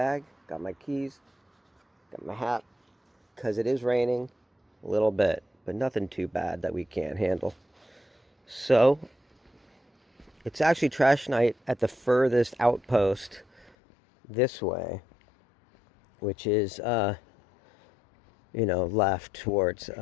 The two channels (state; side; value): drops out; right; at 13.8 s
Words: got my keys, got my hat, because it is raining a little bit, but nothing too bad that we can't handle. So, it's actually trash night at the furthest outpost this way, which is, left towards